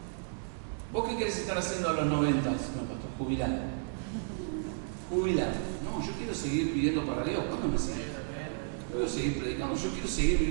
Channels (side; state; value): left; silent; digital silence